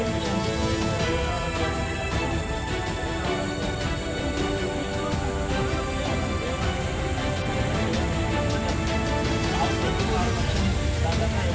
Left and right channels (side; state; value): both; identical; correlation 1.00